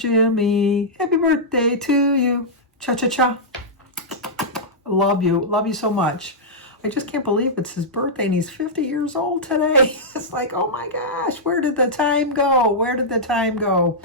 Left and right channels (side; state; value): both; normal; correlation -0.10